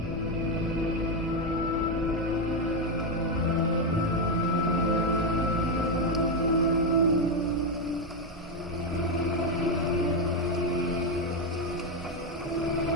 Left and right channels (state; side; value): normal; both; correlation 0.05